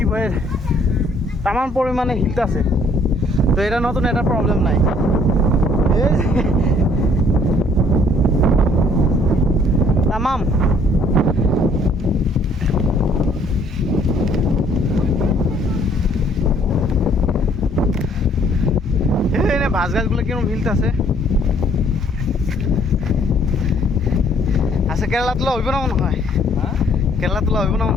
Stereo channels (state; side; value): normal; both; correlation 0.62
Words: বলে তামাম পরিমাণে হিট আছে। তো এটা নতুন, এটা প্রবলেম নাই। এই তামাম ভাস গাছগুলো কিরকম হিলতেছে। আচ্ছা কেরালা তোলা হইব না মনে হয়, কেরালা তোলা হইব না